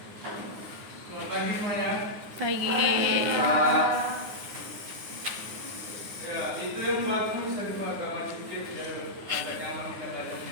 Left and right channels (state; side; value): late; left; 9.6 ms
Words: Selamat pagi semuanya. Pagi. Ya, itu yang bagus saya juga agak maju sedikit biar agak nyaman kita